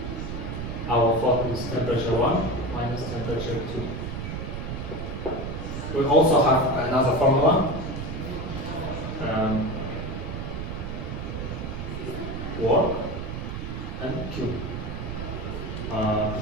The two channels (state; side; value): noise; right; rumble, 5 dB below the sound